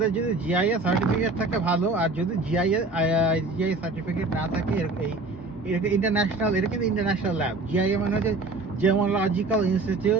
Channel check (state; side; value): quieter; left; 3.4 dB